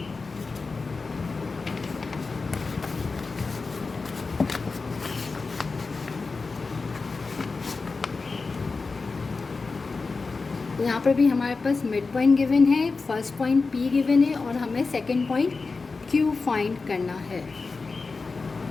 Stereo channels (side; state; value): right; quieter; 4.2 dB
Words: यहाँ पर भी हमारे पास मिड पॉइंट गिवन है, फर्स्ट पॉइंट P गिवन है, और हमें सेकंड पॉइंट Q फाइंड करना है।